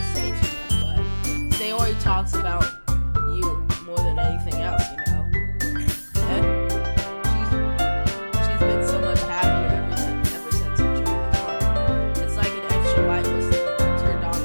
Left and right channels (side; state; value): both; inverted; correlation -1.00